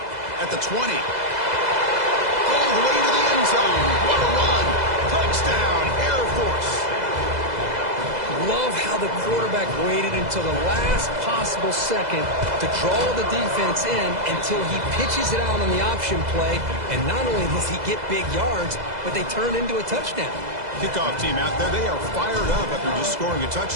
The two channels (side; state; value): left; late; 2.0 ms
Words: At the 20. All the way to the end zone. What a run. Touchdown, Air Force. Love how the quarterback waited until the last possible second to draw the defense in until he pitches it out on the option play. And not only does he get big yards, but they turn into a touchdown. Kickoff team out there. They are fired up after just scoring a